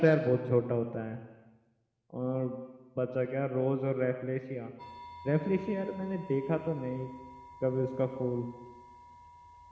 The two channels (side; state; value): both; identical; correlation 1.00